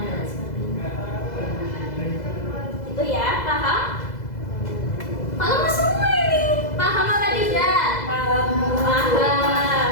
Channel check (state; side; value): late; right; 2.0 ms